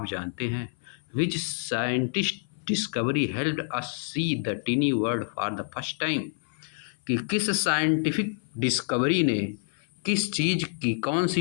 जानते हैं, which scientist discovery helped us see the tiny world for the first time, कि किस साइंटिफिक डिस्कवरी ने, किस चीज़ की, कौन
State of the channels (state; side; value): silent; right; 57 dB below the other